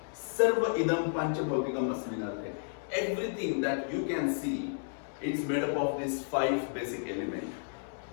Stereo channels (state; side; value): silent; right; digital silence